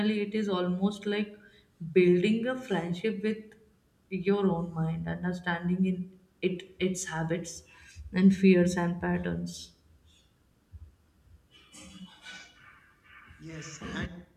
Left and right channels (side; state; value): both; identical; correlation 1.00